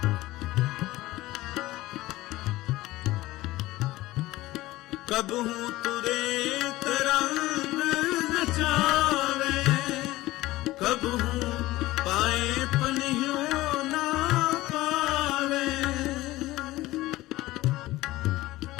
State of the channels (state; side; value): quieter; right; 17.8 dB